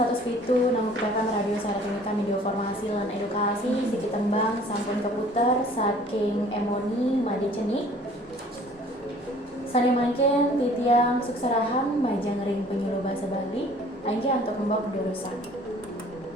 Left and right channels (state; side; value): normal; both; correlation 0.53